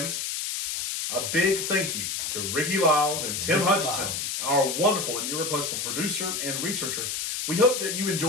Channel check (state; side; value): noise; left; hiss, 2 dB below the sound